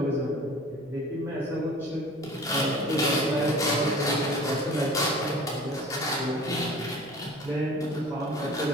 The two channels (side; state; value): right; noise; rumble, 28 dB below the sound